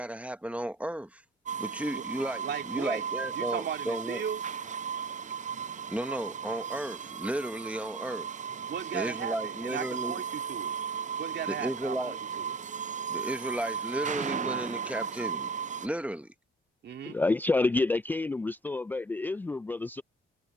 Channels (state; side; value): normal; both; correlation 0.45